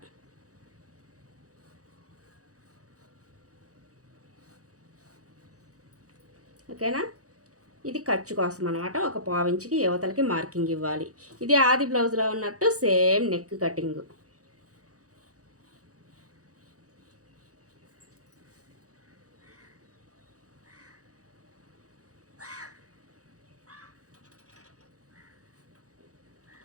ఓకేనా. ఇది ఖర్చు కోసం అనమాట. ఒక 1/4 ఇంచుకి యువతలకి మార్కింగ్ ఇవ్వాలి. ఇది ఆది బ్లౌజ్లో ఉన్నట్టు సేమ్ నెక్ కటింగ్.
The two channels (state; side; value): late; left; 0.66 ms